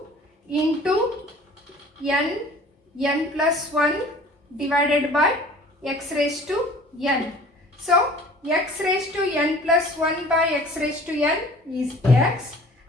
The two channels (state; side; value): normal; both; correlation 0.48